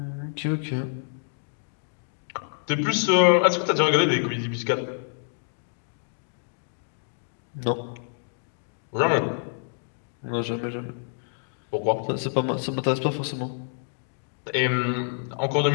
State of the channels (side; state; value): right; silent; digital silence